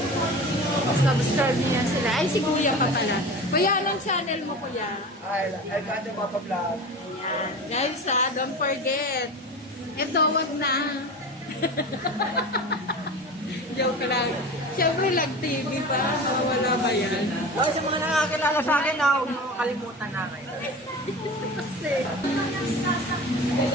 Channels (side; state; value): both; normal; correlation 0.32